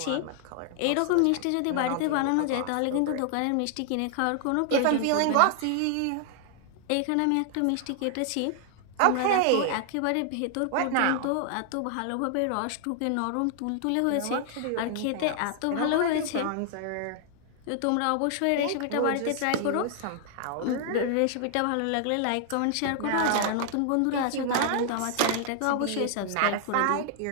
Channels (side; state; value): both; different; correlation 0.00